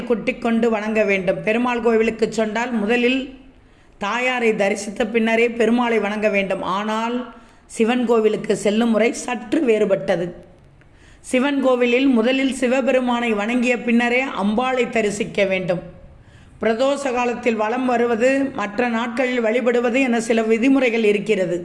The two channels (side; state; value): both; identical; correlation 1.00